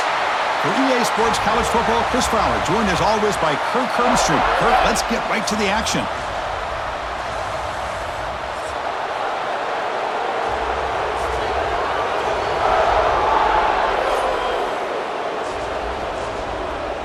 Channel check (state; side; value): identical; both; correlation 1.00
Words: For EA Sports College Football, Chris Fowler, joined as always by Kirk Hermstreet. Kirk, let's get right to the action.